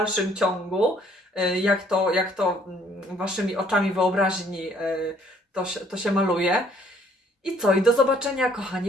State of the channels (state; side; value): normal; both; correlation 0.62